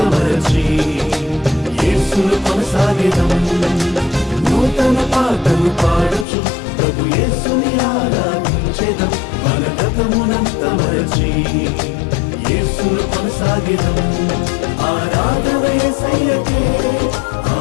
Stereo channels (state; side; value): drops out; right; at 6.2 s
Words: మరచి యేసును కొనసాగెదం. నూతన పాటలు పాడుచు ప్రభు యేసుని ఆరాధించెదం. మన గతమునంత మరచి యేసును కొనసాగెదం. ఆరాధన యేసయ్యకే,